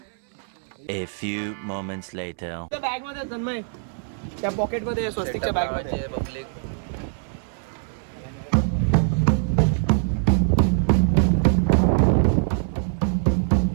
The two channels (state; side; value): silent; left; 63 dB below the other